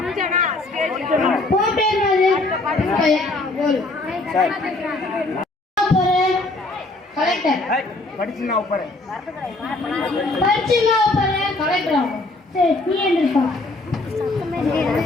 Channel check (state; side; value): quieter; right; 3.0 dB